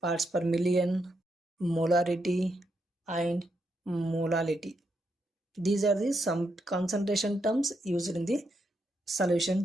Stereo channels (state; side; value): normal; both; correlation 0.81